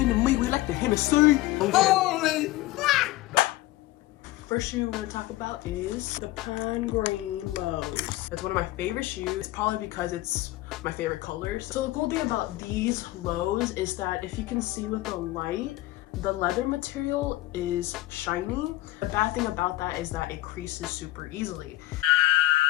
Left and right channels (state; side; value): quieter; right; 17.4 dB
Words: to meet, we like the Hennessy. Holy fuck! First shoe we're gonna talk about is the Pine Green Lows. It's one of my favorite shoes, probably because it's my favorite colors. So the cool thing about these lows is that if you can see with the light, the leather material is shiny. The bad thing about that is that it creases super easily.